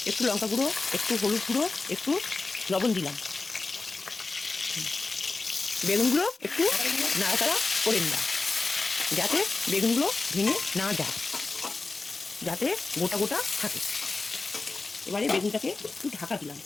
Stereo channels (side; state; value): right; quieter; 3.7 dB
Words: একটু লঙ্কা গুঁড়ো, একটু হলুদ গুঁড়ো, একটু লবণ দিলাম। বেগুনগুলো একটু নাড়াচাড়া করে নিলাম, যাতে বেগুনগুলো ভেঙে না যায়, যাতে গোটা গোটা থাকে। এবারে বেগুনটাকে একটু ঢাকা দিলাম।